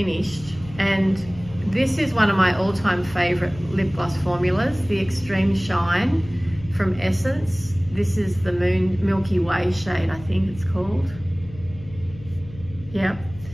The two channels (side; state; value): left; noise; hum, 17 dB below the sound